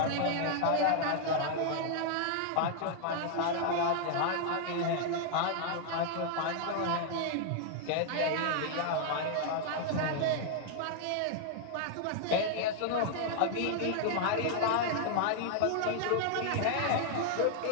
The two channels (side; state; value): both; different; correlation -0.01